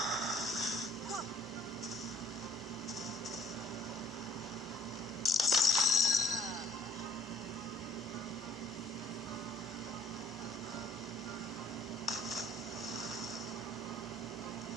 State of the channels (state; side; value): normal; both; correlation 0.60